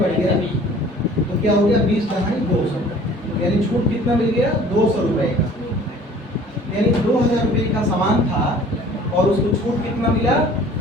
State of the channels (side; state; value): both; normal; correlation 0.50